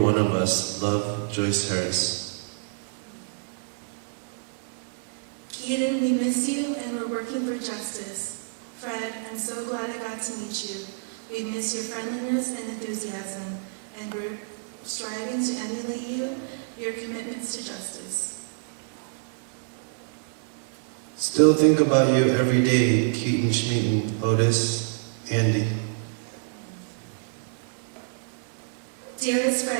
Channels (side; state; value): left; silent; 58 dB below the other